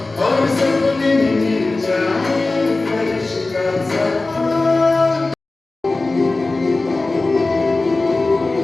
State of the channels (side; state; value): right; quieter; 3.3 dB